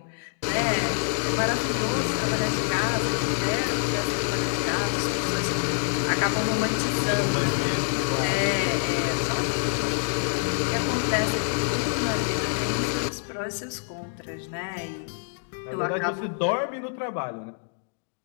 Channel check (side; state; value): right; silent; 61 dB below the other